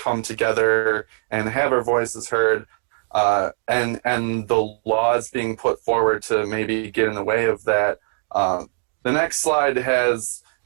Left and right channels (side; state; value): left; silent; digital silence